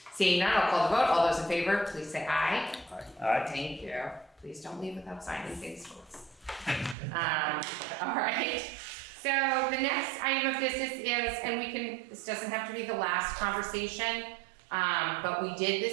Seeing none, I'll call the vote. All those in favor, please say aye. Aye. Thank you. Please don't leave without signing things, folks. All right. So the next item of business is, and this doesn't have to be the last conversation, but we did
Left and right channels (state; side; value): drops out; left; at 7.0 s